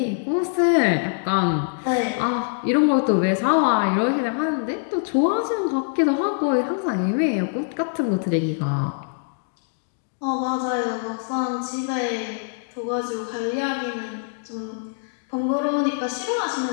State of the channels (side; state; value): right; silent; digital silence